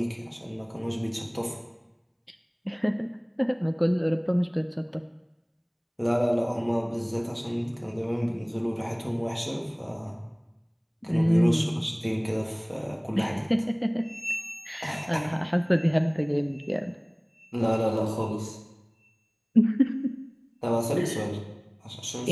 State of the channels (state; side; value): identical; both; correlation 1.00